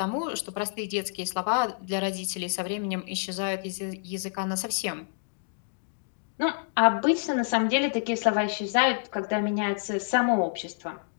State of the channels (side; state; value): right; silent; digital silence